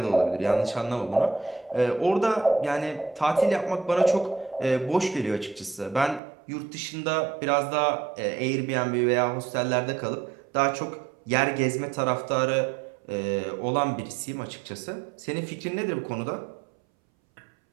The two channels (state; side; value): drops out; left; at 6.2 s